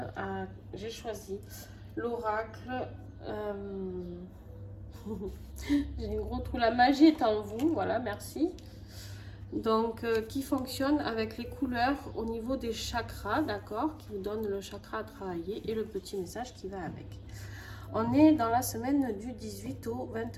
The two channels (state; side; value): identical; both; correlation 1.00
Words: J'ai choisi l'oracle. J'ai un gros trou, la magie est en vous, voilà, merci. Donc, qui fonctionne avec les couleurs au niveau des chakras, d'accord, qui vous donne le chakra à travailler et le petit message qui va avec. On est dans la semaine du 18 au